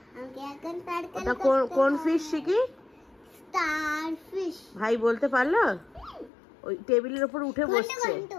ওটা কোন ফিশ শিখি? ভাই বলতে পারলো? ওই টেবিলের উপর উঠে বসছে।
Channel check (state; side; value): drops out; right; at 6.3 s